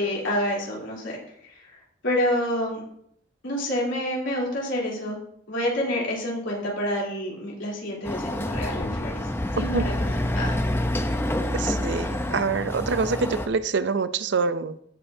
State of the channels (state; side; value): normal; both; correlation 0.30